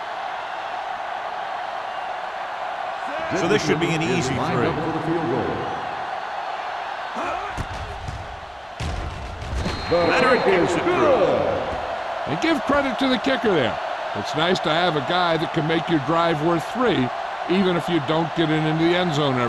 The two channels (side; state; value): both; identical; correlation 1.00